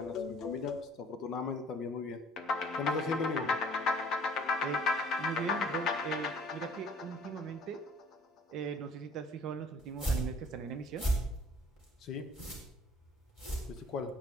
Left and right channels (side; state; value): both; normal; correlation 0.54